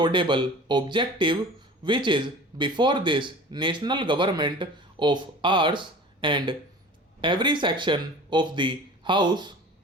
objective which is before this national government of ours and every section of the house.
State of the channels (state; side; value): normal; both; correlation 0.40